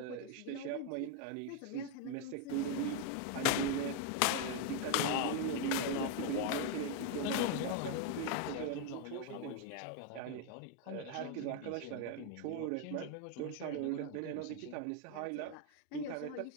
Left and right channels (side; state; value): both; different; correlation 0.01